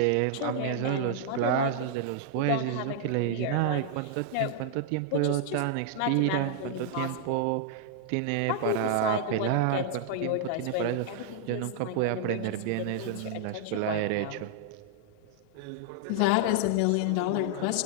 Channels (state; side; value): different; both; correlation -0.01